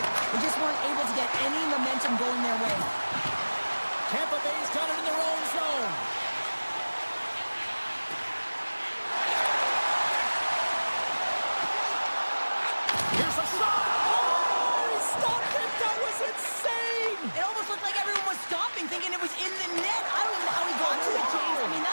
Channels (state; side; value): inverted; both; correlation -1.00